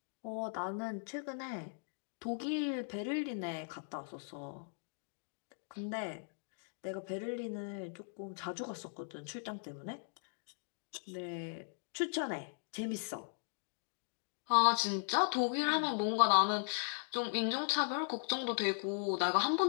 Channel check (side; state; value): right; silent; digital silence